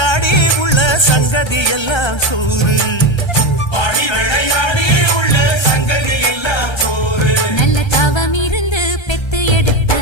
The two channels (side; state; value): right; late; 1.3 ms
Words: உள்ள சங்கதி எல்லாம் கூறு பாடி விளையாடி உள்ள சங்கதி எல்லாம் கூறு நல்ல தவம் இருந்து பெத்து எடுத்த